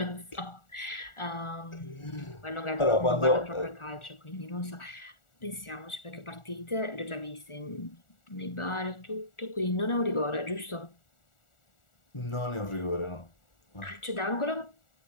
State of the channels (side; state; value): right; late; 1.4 ms